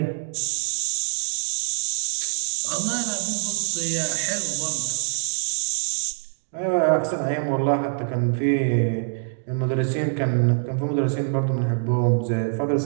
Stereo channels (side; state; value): left; silent; digital silence